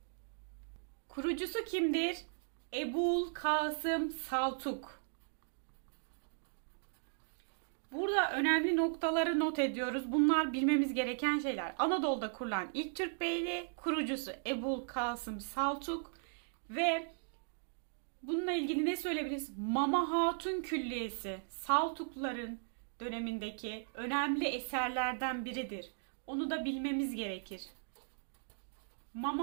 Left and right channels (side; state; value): left; silent; digital silence